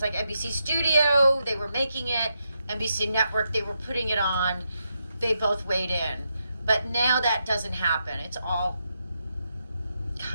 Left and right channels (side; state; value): both; inverted; correlation -0.83